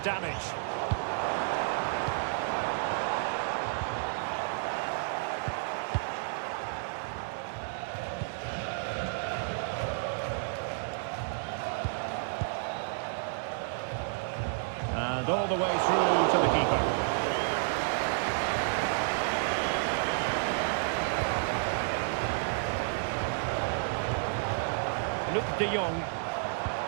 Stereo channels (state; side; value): silent; left; digital silence